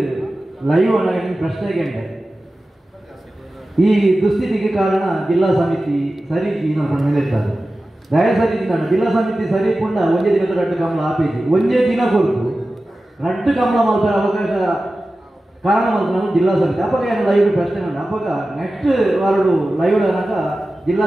ಲೈವ್ ಅನ್ನ ಪ್ರಶ್ನೆಗೆ ಈ ದುಸ್ಥಿತಿಗೆ ಕಾರಣ ಜಿಲ್ಲಾ ಸಮಿತಿ ಸರಿ ಹೇಳ್ತಾರೆ ದಯಸರಿ ಜಿಲ್ಲಾ ಸಮಿತಿ ಸರಿ ಪುಂಡ ಒಂದೇ ದಿನದ ರಡ್ಡು ಕಮಲ ಆಪೇಜಿ ಒಂದೇ ದಿನ ಕೊಟ್ಟು ರಡ್ಡು ಕಮಲ ಮಲ್ಪರ ಅವಕಾಶ ಕಾರಣ ಮಲ್ಪನ ಜಿಲ್ಲಾ ಸಮಿತಿ ಅಪ್ಪಗ ಏನು ಲೈವ್ ಪ್ರಶ್ನೆ ಉಂಟು ಅಪ್ಪಗ ನೆಕ್ಸ್ಟ್ ವಾರಡು ಲೈವ್ ಅನ್ನಾಗ ಜಿಲ್ಲಾ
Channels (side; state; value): both; normal; correlation 0.95